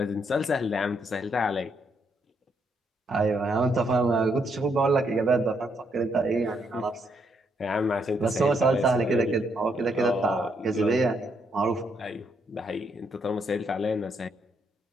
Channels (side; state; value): both; normal; correlation 0.75